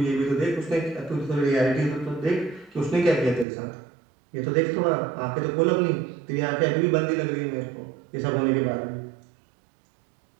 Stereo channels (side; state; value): left; drops out; at 3.5 s